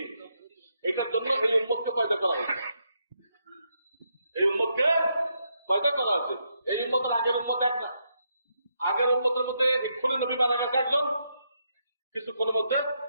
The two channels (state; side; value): inverted; both; correlation -0.79